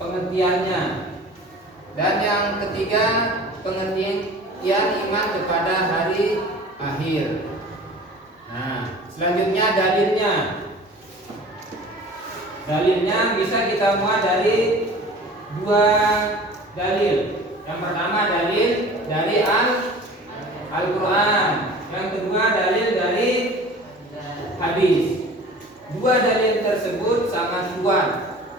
pengertiannya. Dan yang ketiga, pengertian iman kepada hari akhir. Nah, selanjutnya dalilnya. Dalilnya bisa kita muat dari dua dalil. Yang pertama dalil dari Al-Quran, yang kedua dalil dari hadis. Dua dalil tersebut sangat kuat.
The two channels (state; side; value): normal; both; correlation 0.43